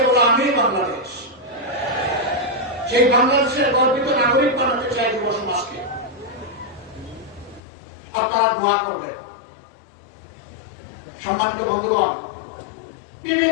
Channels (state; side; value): drops out; right; at 7.6 s